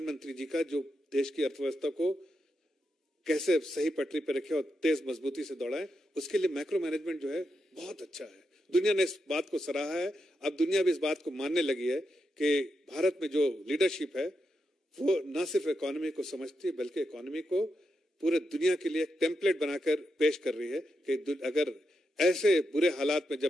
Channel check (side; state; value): both; normal; correlation 0.85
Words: जी का, जो देश की अर्थव्यवस्था को कैसे सही पटरी पर रखे और तेज मजबूती से दौड़ाए, उसके लिए मैक्रो मैनेजमेंट जो है बहुत अच्छा है। दुनिया ने इस बात को सराहा है। अब दुनिया भी इस बात को मानने लगी है कि भारत में जो लीडरशिप है वो न सिर्फ इकोनॉमी को समझती है, बल्कि इकोनॉमी को पूरे दुनिया के लिए एक टेम्पलेट बनाकर पेश कर रही है कि अगर ऐसे बुरे हालात में,